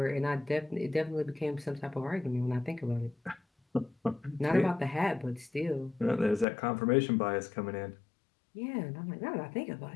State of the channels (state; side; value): drops out; right; at 6.5 s